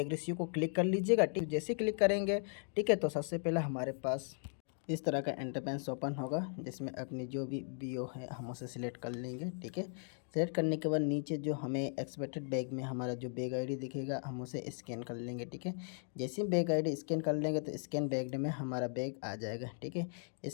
रिसीव को क्लिक कर लीजिएगा। ठीक, जैसे क्लिक करेंगे ठीक है तो सबसे पहले हमारे पास इस तरह का इंटरफेस ओपन होगा जिसमें अपनी जो भी बीओ है हम उसे सिलेक्ट कर लेंगे। ठीक है, सिलेक्ट करने के बाद नीचे जो हमें एक्सपेक्टेड बैग में हमारा जो बैग आईडी दिखेगा हम उसे स्कैन कर लेंगे। ठीक है, जैसे ही बैग आईडी स्कैन कर लेंगे तो स्कैन बैग में हमारा बैग आ जाएगा। ठीक है,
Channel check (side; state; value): right; silent; 53 dB below the other